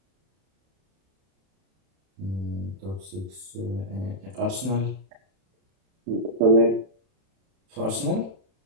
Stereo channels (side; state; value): left; late; 31 ms